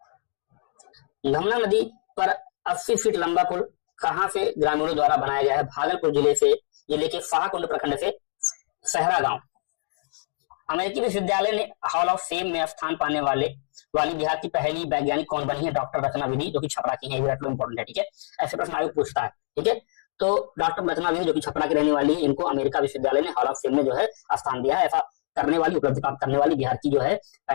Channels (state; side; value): silent; right; digital silence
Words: घमला नदी पर 80 फीट लंबा पुल कहां से ग्रामीणों द्वारा बनाया गया है? भागलपुर जिले के शाहकुंड प्रखंड से सहरा गांव। अमेरिकी विश्वविद्यालय ने हॉल ऑफ फेम में स्थान पाने वाली बिहार की पहली वैज्ञानिक कौन बनी है? डॉक्टर रचना विधि, जो कि छपरा की है। इंपॉर्टेंट है, ठीक है। ऐसे प्रश्न आयोग पूछता है, ठीक है। तो डॉक्टर रचना विधि जो कि छपरा की रहने वाली है, इनको अमेरिका विश्वविद्यालय ने हॉल ऑफ फेम में जो है स्थान दिया है। ऐसा करने वाली, उपलब्धि प्राप्त करने वाली बिहार की जो है